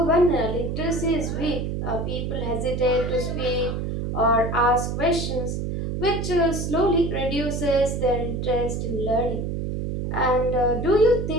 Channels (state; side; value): noise; right; hum, 3 dB below the sound